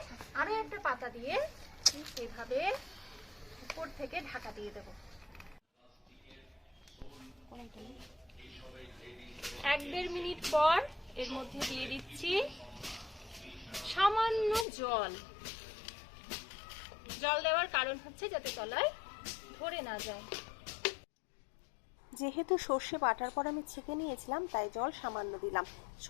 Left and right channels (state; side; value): drops out; right; at 14.7 s